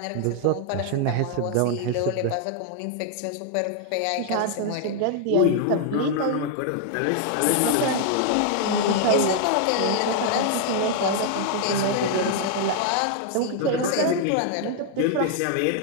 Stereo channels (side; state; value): both; different; correlation 0.00